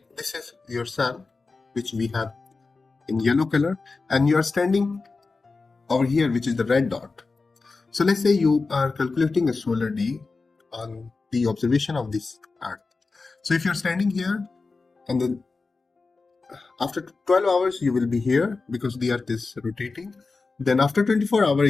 this is your sun, which we have in yellow color, and you are standing over here, which is the red dot. So let's say you are calculating a solar day on the observation of this earth. So if you're standing here, and then after 12 hours you will be here because the earth is rotating. Then after 24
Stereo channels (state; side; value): quieter; right; 4.0 dB